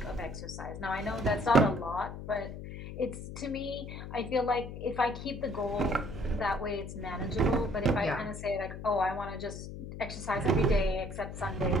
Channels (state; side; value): noise; left; hum, 9 dB below the sound